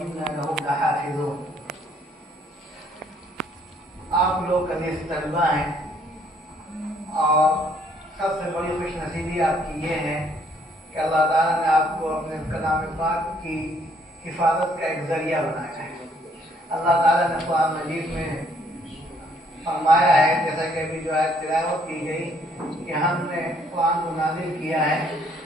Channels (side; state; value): both; normal; correlation 0.66